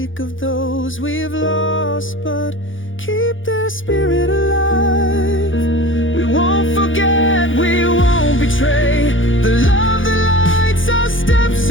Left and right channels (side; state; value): right; late; 0.57 ms